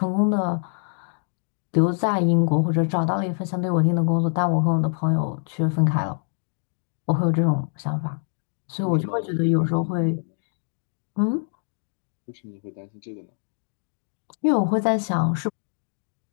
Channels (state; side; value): silent; right; digital silence